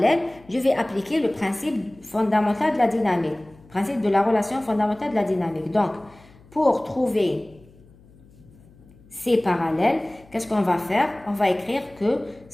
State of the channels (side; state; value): left; noise; hum, 26 dB below the sound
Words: Je vais appliquer le principe fondamental de la dynamique. Principe de la relation fondamentale de la dynamique. Donc, pour trouver C parallèle, qu'est-ce qu'on va faire? On va écrire que